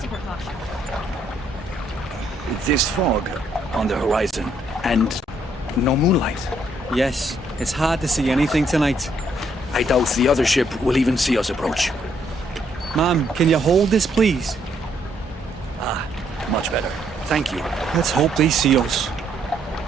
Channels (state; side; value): normal; both; correlation 0.71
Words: precaution. On the horizon. And no moonlight. Yes, it's hard to see anything tonight. I doubt the other ship will even see us approach. Ma'am, can you hold this, please? Thank you. Let's hope they see us.